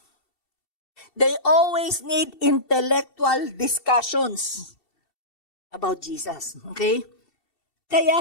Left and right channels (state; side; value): late; right; 2.7 ms